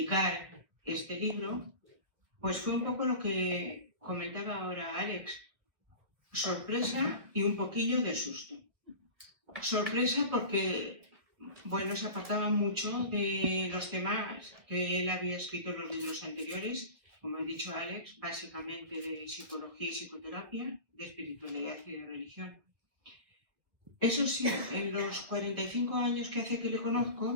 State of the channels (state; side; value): late; left; 1.4 ms